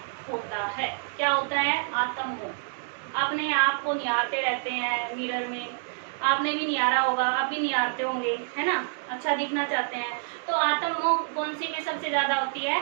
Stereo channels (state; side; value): silent; left; digital silence